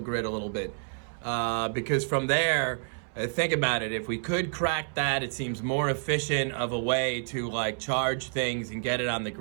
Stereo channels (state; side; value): silent; left; 59 dB below the other